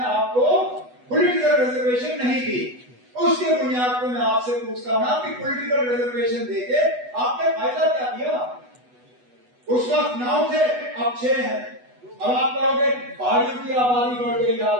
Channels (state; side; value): late; left; 8.1 ms